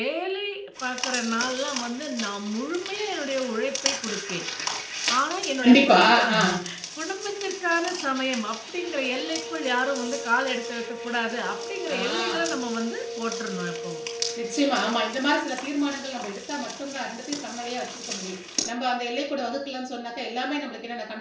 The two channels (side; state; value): both; identical; correlation 1.00